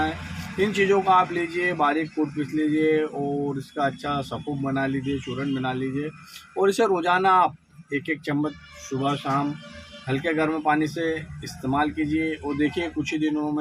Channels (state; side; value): identical; both; correlation 1.00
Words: है। इन चीज़ों को आप लीजिए, बारीक कूट पीस लीजिए और इसका अच्छा सफ़ूफ बना लीजिए, चूरन बना लीजिए और इसे रोज़ाना आप एक एक चम्मच सुबह शाम हल्के गर्म पानी से इस्तेमाल कीजिए और देखिए कुछ ही दिनों